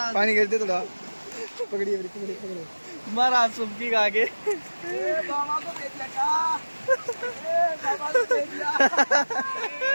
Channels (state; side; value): inverted; both; correlation -1.00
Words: पानी गिरते थोड़ा, पकड़िए पकड़िए पकड़िए। महाराज सुबकी का आगे बाबा को भेज दिया क्या? बाबा को भेज दिया।